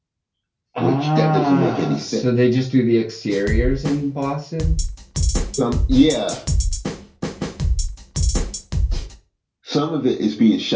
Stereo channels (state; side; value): identical; both; correlation 1.00